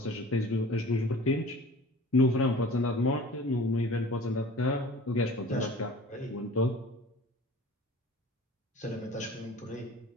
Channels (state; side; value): normal; both; correlation 0.43